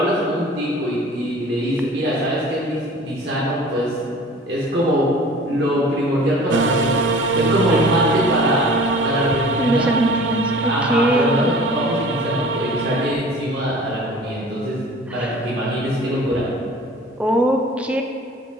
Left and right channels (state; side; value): normal; both; correlation 0.45